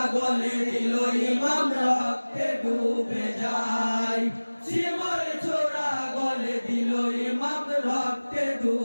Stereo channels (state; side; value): inverted; both; correlation -1.00